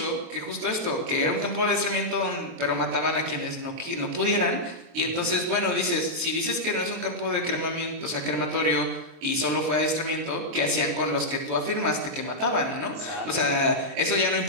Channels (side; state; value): left; late; 23 ms